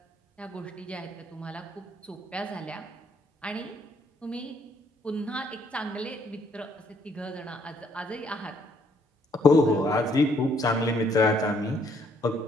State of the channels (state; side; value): normal; both; correlation 0.68